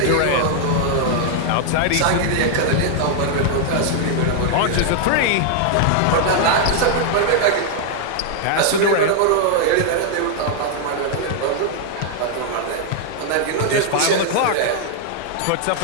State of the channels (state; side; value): different; both; correlation 0.00